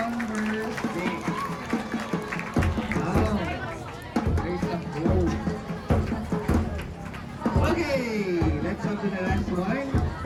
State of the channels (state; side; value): identical; both; correlation 1.00